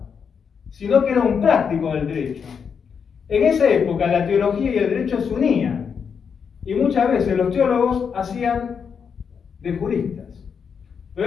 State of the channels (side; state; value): right; quieter; 6.6 dB